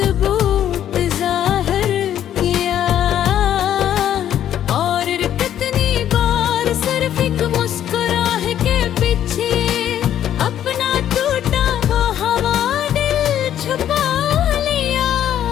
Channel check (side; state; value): right; quieter; 10.8 dB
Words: जाहिर किया, और कितनी बार सिर्फ एक मुस्कुराह के पीछे अपना टूटा वो हवा दिल छुपा लिया।